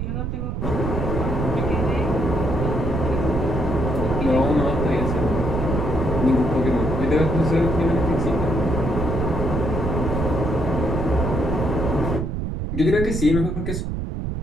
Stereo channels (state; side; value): noise; right; rumble, 2 dB below the sound